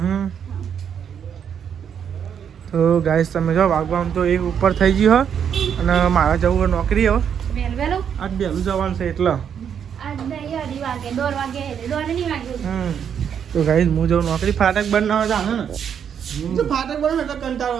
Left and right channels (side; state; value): left; quieter; 8.1 dB